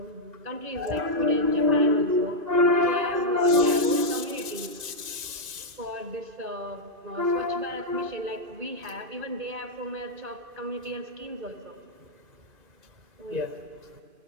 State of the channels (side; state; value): left; late; 2.5 ms